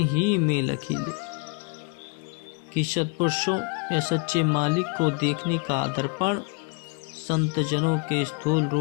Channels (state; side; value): quieter; right; 30.3 dB